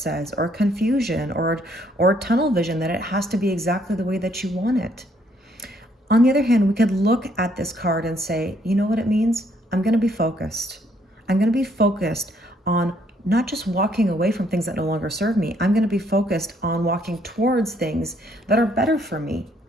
or confusion, or tunnel vision, that it has to be exactly the way that you want it. On the other hand, we could look at this card and say, you know what it means? I'm going to be focused. I'm going to be focused on not just walking away from things that no longer serve me. I'm going to be focused on walking towards things that are better for me.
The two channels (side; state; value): both; normal; correlation 0.68